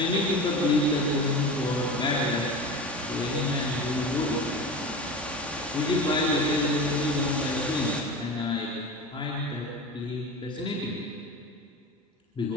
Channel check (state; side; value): normal; both; correlation 0.30